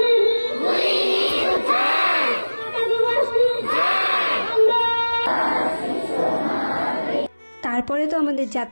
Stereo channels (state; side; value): inverted; both; correlation -1.00